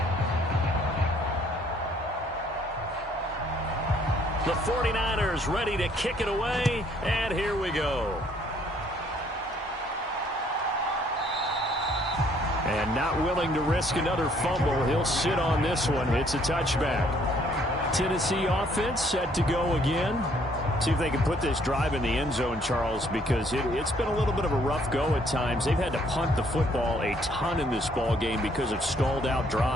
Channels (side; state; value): both; normal; correlation 0.64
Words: The 49ers ready to kick it away, and here we go. And not willing to risk another fumble. He'll sit on this one. It's a touchback. Tennessee offense set to go again. See if they can put this drive in the end zone, Charles, because it's been a little bit of a rough go at times. They've had to punt the football a ton in this ball game because of stalled out